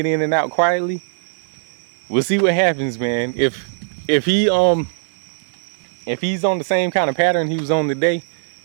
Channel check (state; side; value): silent; left; 66 dB below the other